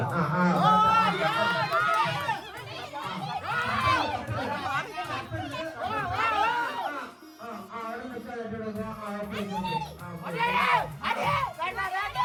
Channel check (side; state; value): both; identical; correlation 1.00